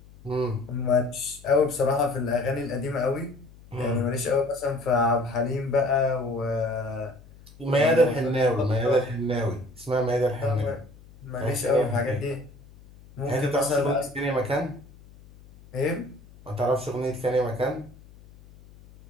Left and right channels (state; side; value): noise; left; hum, 22 dB below the sound